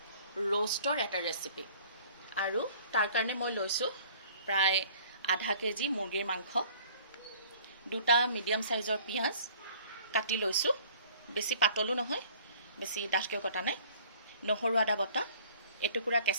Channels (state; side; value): inverted; both; correlation -0.52